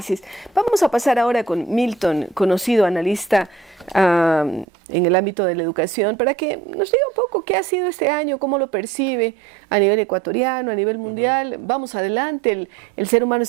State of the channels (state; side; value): drops out; left; at 4.7 s